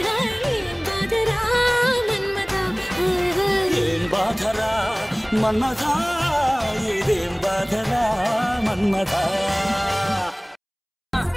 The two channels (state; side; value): identical; both; correlation 1.00